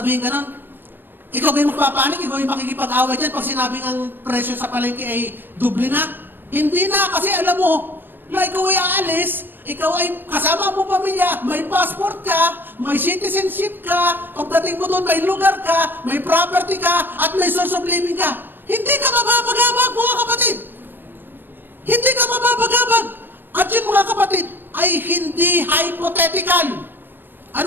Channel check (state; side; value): late; left; 0.096 ms